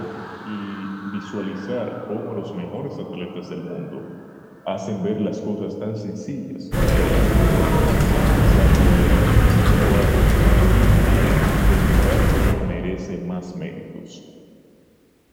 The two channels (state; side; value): identical; both; correlation 1.00